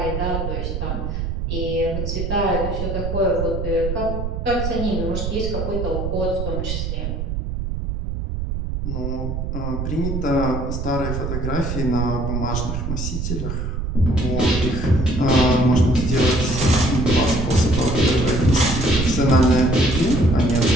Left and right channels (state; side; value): noise; right; rumble, 3 dB below the sound